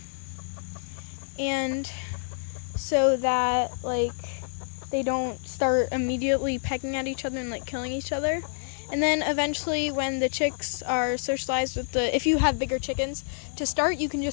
and so that like they don't start immediately pecking at each other and like killing each other. And then eventually when the chicks are socialized with if you have bigger chickens, to start you can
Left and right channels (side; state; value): right; silent; digital silence